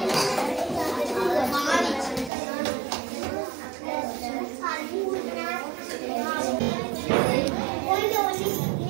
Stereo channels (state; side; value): drops out; left; at 2.3 s